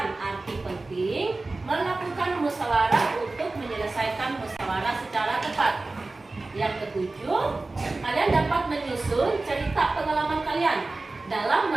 arti penting melakukan musyawarah untuk menyelesaikan musyawarah secara tepat. Yang ketujuh, kalian dapat menyusun cerita pengalaman kalian dalam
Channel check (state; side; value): quieter; left; 3.3 dB